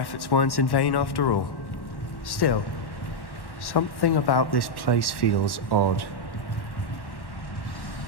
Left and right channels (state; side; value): late; right; 1.1 ms